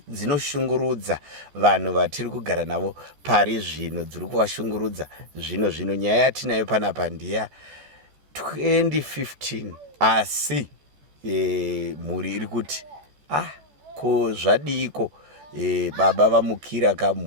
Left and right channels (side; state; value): left; late; 14 ms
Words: dzinoshungurudza vanhu vatiri kugara navo pari zvino, dziri kuvashungurudza zvino. Nyaya yatinayo panapa ndiya 2015 asi mhuri iri kuti ko zvadiko baba vamukira